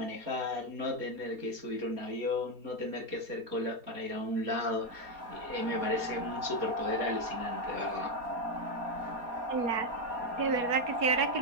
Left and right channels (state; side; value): late; left; 4.2 ms